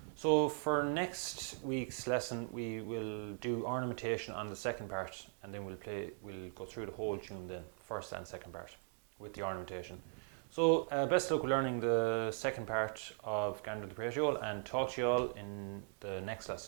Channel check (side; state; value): left; quieter; 36.9 dB